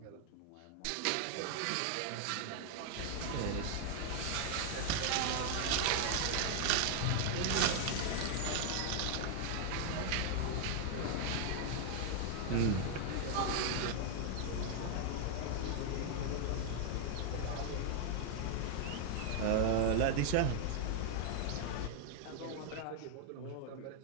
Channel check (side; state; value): both; different; correlation 0.00